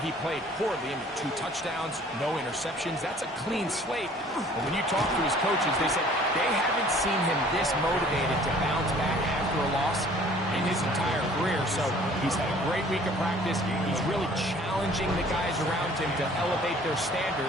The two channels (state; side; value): normal; both; correlation 0.53